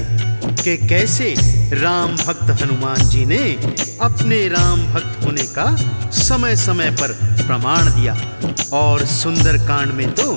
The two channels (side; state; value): both; inverted; correlation -1.00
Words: कि कैसे राम भक्त हनुमान जी ने अपने राम भक्त होने का समय समय पर प्रमाण दिया। और सुंदर कांड में तो